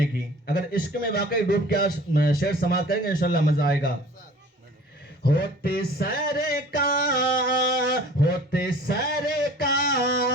کی۔ اگر عشق میں واقعی ڈوب کے شعر سماعت کریں گے انشاءاللہ مزہ آئے گا۔ ہوتے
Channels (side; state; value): both; normal; correlation 0.47